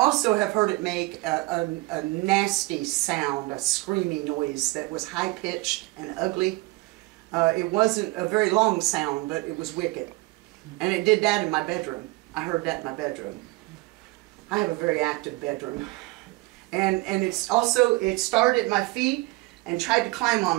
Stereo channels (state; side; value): quieter; left; 22.5 dB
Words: have heard it make a nasty sound, a screaming noise that was high-pitched and ugly. It wasn't a very long sound, but it was wicked. And it did that in my bedroom. I heard that in my bedroom. I have a very active bedroom. And it started at my feet and tried to climb